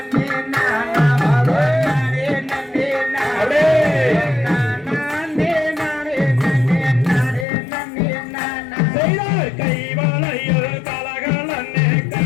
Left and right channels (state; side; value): drops out; right; at 7.5 s